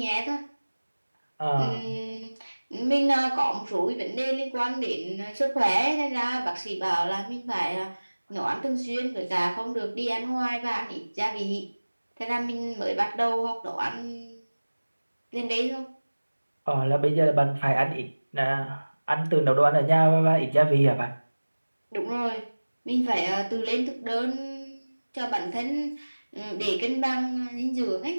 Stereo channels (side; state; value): both; inverted; correlation -1.00